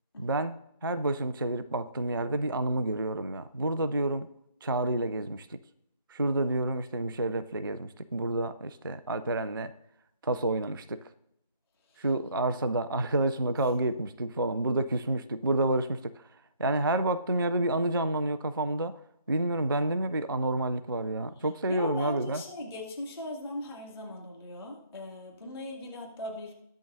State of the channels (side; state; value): both; inverted; correlation -0.63